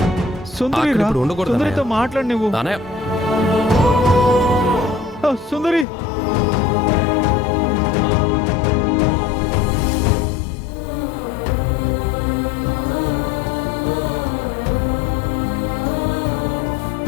సుందరి అక్కడ రా. ఇప్పుడు ఉండకూడదు సుందరితో అన్నయ్య. మాట్లాడు నువ్వు. అన్నయ్య సుందరి,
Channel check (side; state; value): right; drops out; at 5.9 s